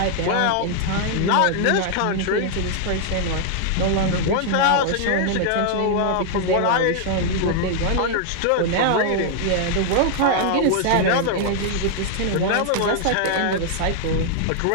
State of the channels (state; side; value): different; both; correlation 0.00